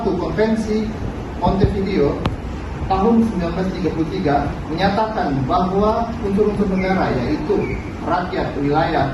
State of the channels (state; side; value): identical; both; correlation 1.00